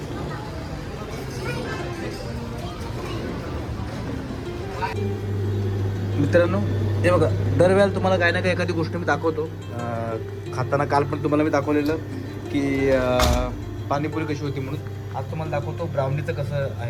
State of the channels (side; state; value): both; identical; correlation 1.00